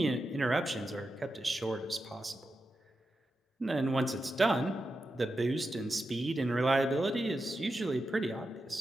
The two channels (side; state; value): both; normal; correlation 0.89